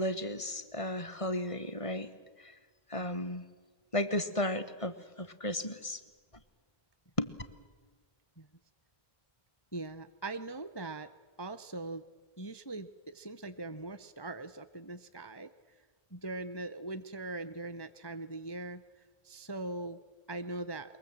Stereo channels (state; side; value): late; right; 1.5 ms